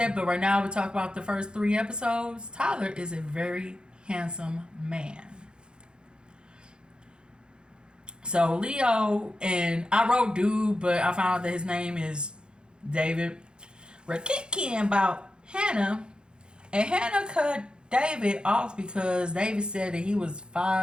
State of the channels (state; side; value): late; left; 0.049 ms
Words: but right now we talk about the first 3 episodes. Tyler is a very handsome man. So Leo, and I wrote dude, but I found out that his name is David. We're kicking about Hannah, and Hannah cut David off because David said that he was